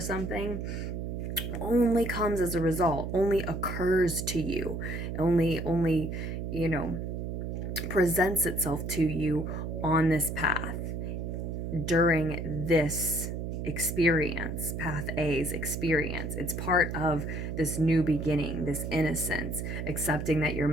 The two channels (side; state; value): right; noise; hum, 4 dB below the sound